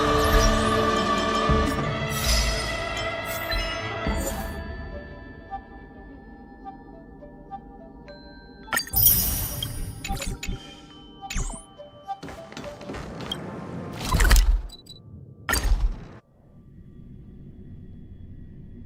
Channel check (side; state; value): both; identical; correlation 1.00